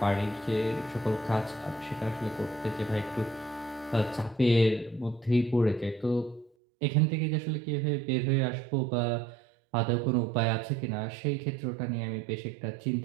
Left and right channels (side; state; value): left; drops out; at 6.5 s